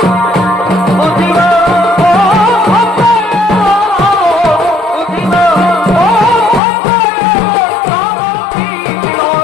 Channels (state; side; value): drops out; right; at 6.6 s